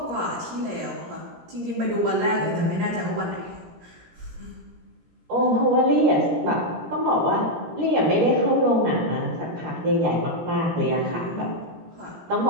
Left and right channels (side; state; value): left; late; 17 ms